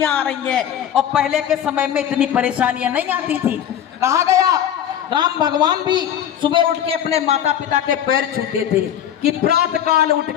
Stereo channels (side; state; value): right; quieter; 10.1 dB